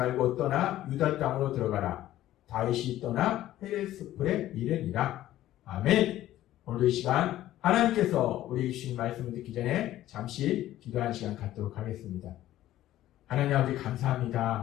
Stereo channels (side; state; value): right; quieter; 14.0 dB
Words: 떠나 유다 땅으로 들어가라. 다윗이 떠나 헤레스풀에 이르니라. 아멘. 오늘도 이 시간 하나님께서 우리에게 주신 말씀을 듣기 전에 잠시 기도하는 시간 갖도록 하겠습니다. 하나님 아버지